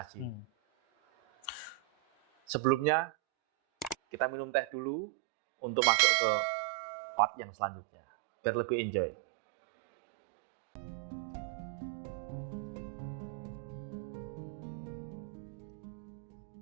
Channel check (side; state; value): left; drops out; at 4.7 s